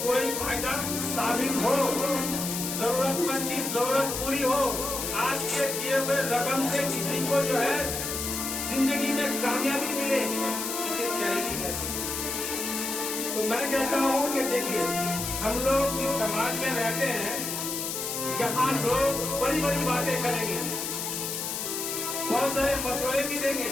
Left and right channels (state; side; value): noise; left; hiss, 3 dB below the sound